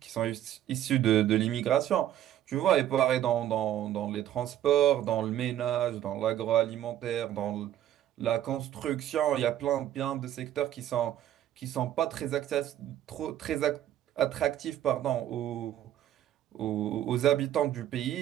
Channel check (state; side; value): quieter; left; 11.9 dB